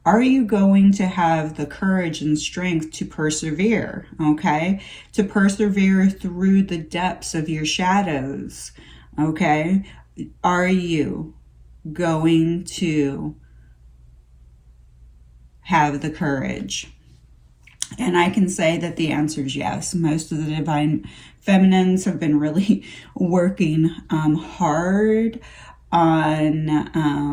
Are you going to have the courage and strength to persevere, okay? To persevere through the depths of your shadows, okay? Are you going to have the courage? And I can say that the answer is yes. Most of the divine feminines have been really working hard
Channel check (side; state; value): both; identical; correlation 1.00